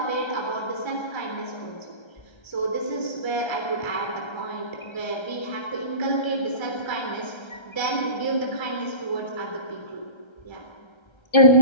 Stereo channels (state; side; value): late; right; 1.3 ms